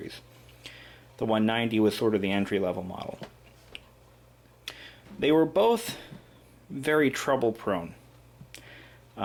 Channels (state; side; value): identical; both; correlation 1.00